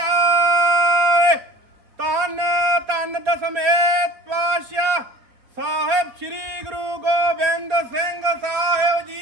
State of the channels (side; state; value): left; late; 4.3 ms